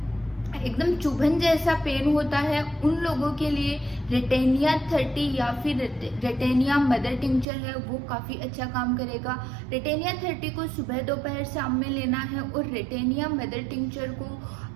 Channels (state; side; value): drops out; left; at 7.5 s